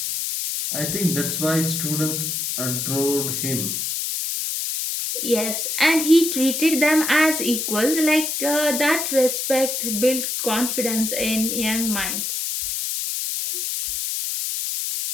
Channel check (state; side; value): noise; left; hiss, 2 dB below the sound